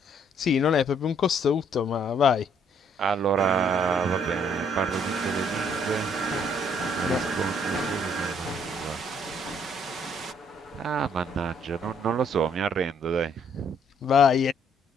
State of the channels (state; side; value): normal; both; correlation 0.66